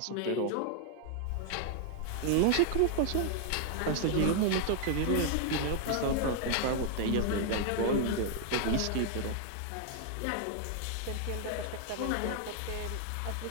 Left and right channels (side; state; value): both; different; correlation 0.00